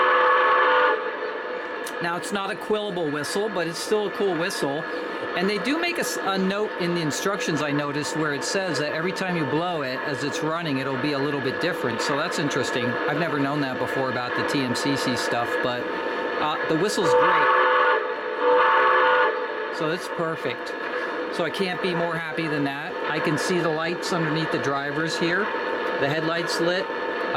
Now, it's not a quillable whistle, but it's still a cool whistle. And they do make a note in the instructions, I noticed, where it says that every time you blow it, as it's running, it'll be a little bit different. So that's interesting. I've never known that before about the TMCC stuff, but the whistle's great. So it's perfect. So I can't be more happy than that. I can see the lights underneath the drivers here. The headlights lit.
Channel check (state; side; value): identical; both; correlation 1.00